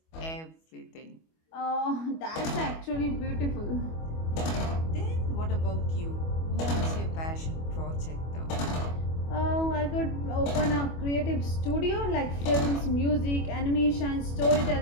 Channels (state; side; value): late; right; 25 ms